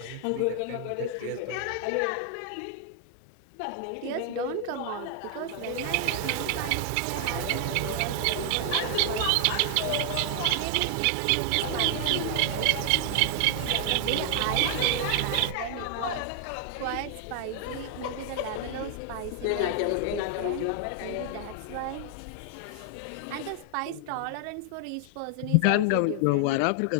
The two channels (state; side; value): different; both; correlation 0.00